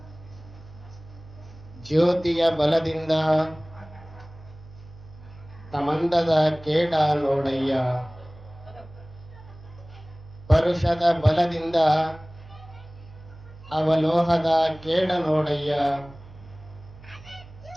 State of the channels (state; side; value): noise; right; hum, 19 dB below the sound